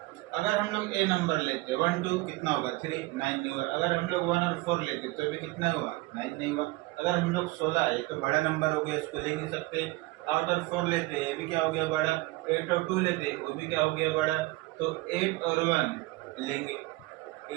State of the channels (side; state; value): left; quieter; 21.0 dB